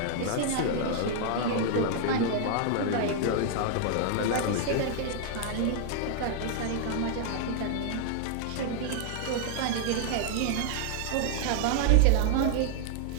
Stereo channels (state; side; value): different; both; correlation 0.00